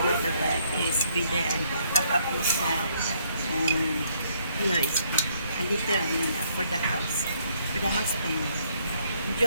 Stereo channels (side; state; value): both; inverted; correlation -0.69